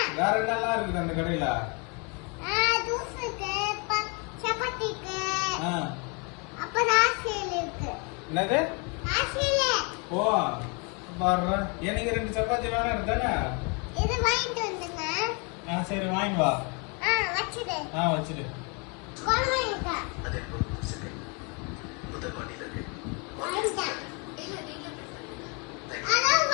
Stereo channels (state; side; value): quieter; right; 33.2 dB